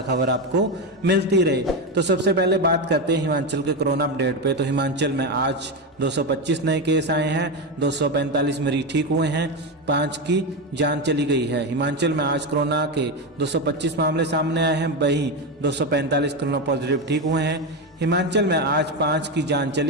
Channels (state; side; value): normal; both; correlation 0.13